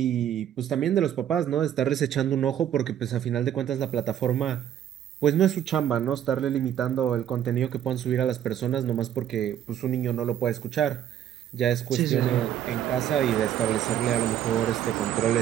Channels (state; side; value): quieter; left; 10.4 dB